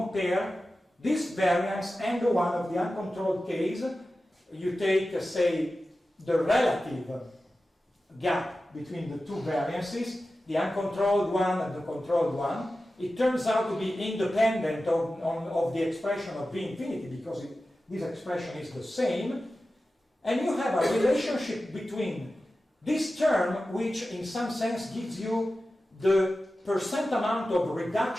this variance and the one of the uncontrolled case. You take, say, the relative gap between the two variances, the uncontrolled one and the controlled one. It turns out to be independent of the expression of V infinity, because this expression is the same. And you have a relationship between this term, which in some sense gives you the percent amount of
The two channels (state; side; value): normal; both; correlation 0.94